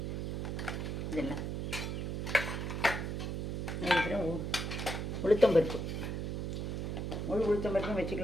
இதெல்லாம். அதுக்கப்புறம் உளுத்தம்பருப்பு, முழு உளுத்தம்பருப்பும்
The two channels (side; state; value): right; noise; hum, 2 dB below the sound